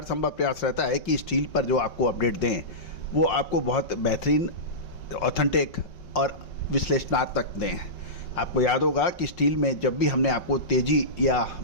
संभव प्रयास रहता है कि स्टील पर जो आपको अपडेट दें वो आपको बहुत बेहतरीन, ऑथेंटिक और विश्लेषणात्मक दें। आपको याद होगा कि स्टील में जब भी हमने आपको तेज़ी या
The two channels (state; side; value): late; right; 5.3 ms